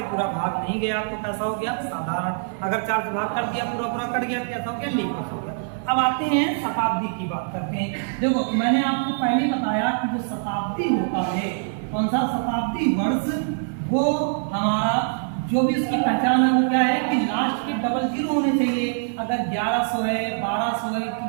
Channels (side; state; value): left; silent; 60 dB below the other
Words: पूरा भाग नहीं गया तो कैसा हो गया? साधारण। अगर 4 से भाग कर दिया, पूरा पूरा कट गया तो कैसा हो गया? लीप वर्ष हो गया। अब आते हैं शताब्दी की बात करते हैं। देखो मैंने आपको पहले बताया कि जो शताब्दी होता है, कौन सा शताब्दी वर्ष, वो हमारा जो भी उसकी पहचान है वो क्या है कि लास्ट के डबल जीरो होने चाहिए। अगर 1100 है, 1200 है,